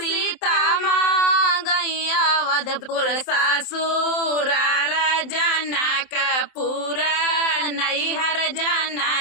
मांगई अवधपुर ससुराल जनक पूरा नैहर,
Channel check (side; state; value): right; late; 27 ms